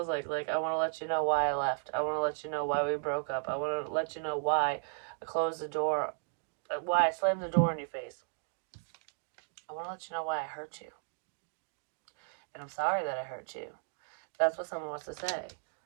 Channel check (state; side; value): silent; left; digital silence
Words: like. Like, I want to let you know why I left. I want to let you know why we broke up. I want to let you know why I closed the door, why I slammed the door in your face. I want to let you know why I hurt you. And I'm sorry that I hurt you. That's what someone wants to say.